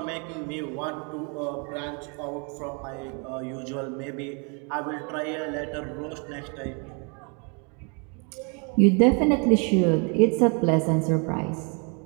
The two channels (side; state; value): left; quieter; 35.0 dB